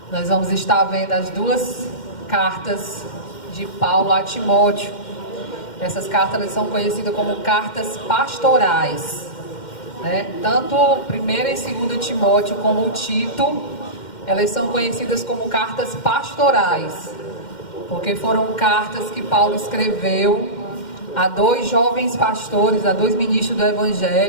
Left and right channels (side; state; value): right; late; 2.1 ms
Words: nós vamos estar vendo as 2 cartas de Paulo a Timóteo. Essas cartas elas são conhecidas como cartas pastorais, né? Tanto 1ª e 2ª Timóteo como o Tito, elas são conhecidas como cartas pastorais, porque foram cartas que Paulo escreveu a 2 jovens pastores, a 2 ministros do